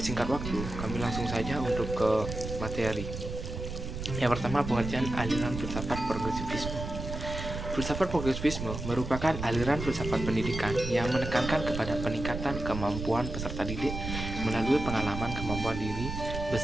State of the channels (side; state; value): right; noise; rumble, 6 dB below the sound